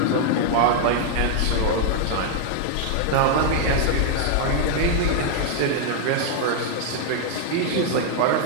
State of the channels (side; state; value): both; different; correlation -0.01